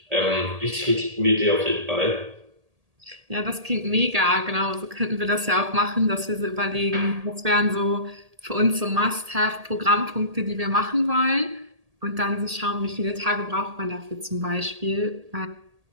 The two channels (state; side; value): late; left; 1.8 ms